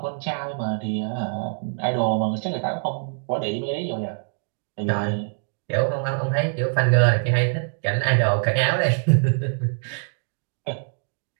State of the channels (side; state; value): left; silent; digital silence